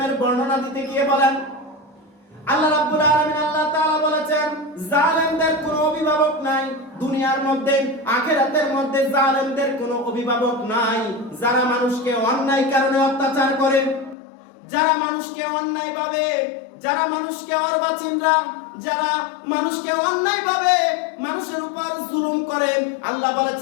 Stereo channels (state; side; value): drops out; right; at 14.2 s